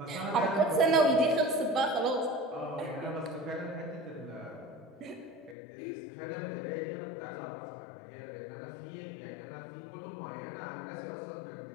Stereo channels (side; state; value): right; drops out; at 5.6 s